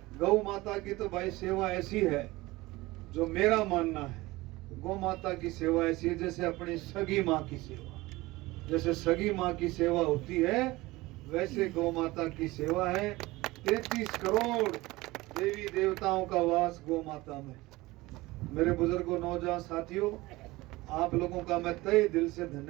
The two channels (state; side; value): quieter; left; 20.2 dB